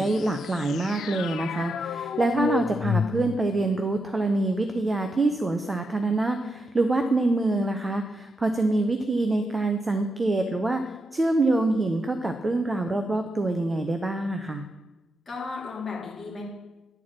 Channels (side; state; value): both; normal; correlation 0.84